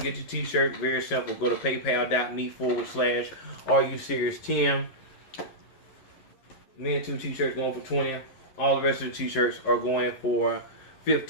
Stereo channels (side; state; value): right; late; 11 ms